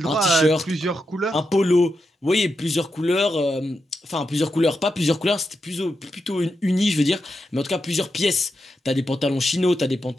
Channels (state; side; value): normal; both; correlation 0.86